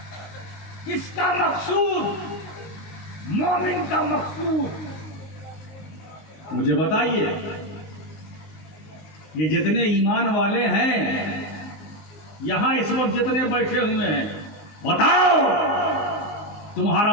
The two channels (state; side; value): late; right; 19 ms